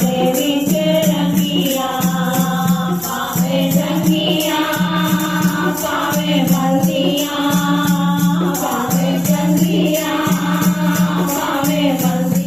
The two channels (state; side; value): noise; right; hum, 25 dB below the sound